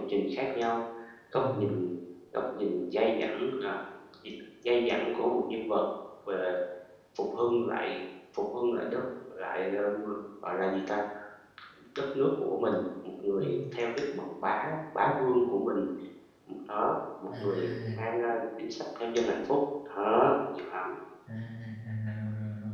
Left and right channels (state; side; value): identical; both; correlation 1.00